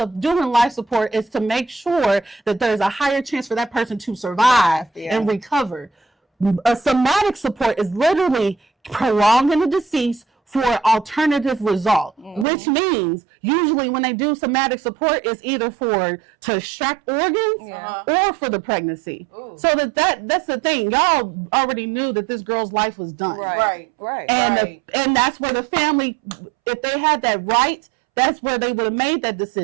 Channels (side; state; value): left; drops out; at 12.5 s